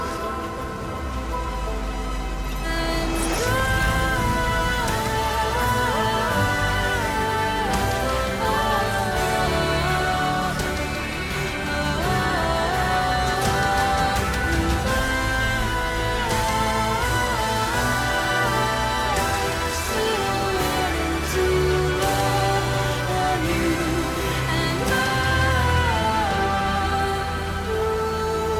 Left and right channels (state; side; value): identical; both; correlation 1.00